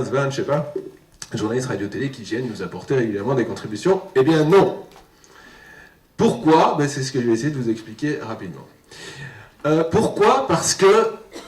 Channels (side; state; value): both; identical; correlation 1.00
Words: 20, je sais pas, journalistes radio-télé qui viennent nous apporter régulièrement des contributions. Eh bien non. Pourquoi? C'est ce que je vais essayer de vous expliquer rapidement. Pourquoi? Parce que,